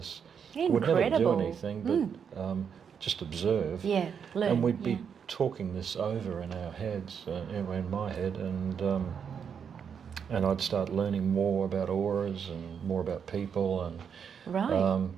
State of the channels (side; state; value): left; quieter; 7.2 dB